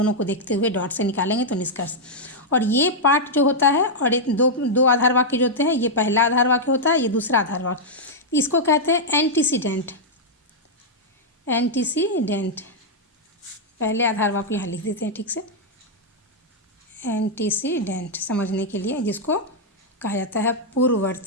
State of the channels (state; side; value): normal; both; correlation -0.05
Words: को देखते हुए डॉट से निकालेंगे तो निष्कर्ष। और ये पार्ट जो होता है, और दो आधार वाक्य जो होते हैं, ये पहला आधार वाक्य होता है, ये दूसरा आधार वाक्य, इसको कहते हैं एंटीसीडेंट। पहले आधार वाक्य यहाँ लिख देते हैं ठीक से, एंटीसीडेंट समझने के लिए, जिसको कहा जाता है